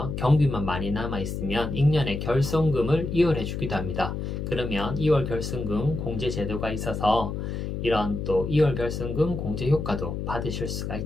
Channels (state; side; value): noise; left; hum, 4 dB below the sound